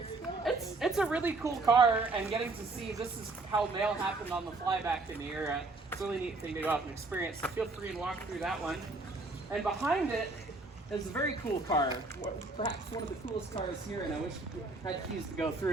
it's a really cool car, and getting to see this is how mail happened on the fly back in the era. It's a really neat thing to go out and experience. So feel free to walk through that one. And behind it is a very cool car, perhaps one of the coolest cars here, and I wish I had keys to go through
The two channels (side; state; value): left; quieter; 3.3 dB